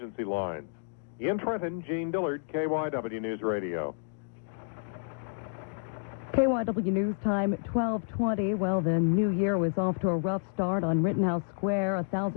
lines. In Trenton, Gene Dillard, KYW News Radio. KYW News Time, 12:20. Well, the new year was off to a rough start on Rittenhouse Square.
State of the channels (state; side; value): silent; right; digital silence